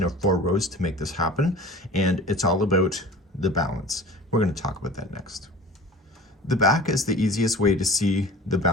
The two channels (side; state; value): both; normal; correlation 0.41